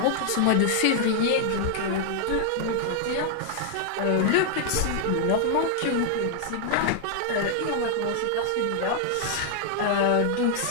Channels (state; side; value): different; both; correlation 0.00